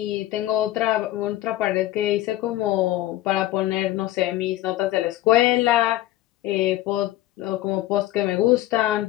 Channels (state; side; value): quieter; right; 15.2 dB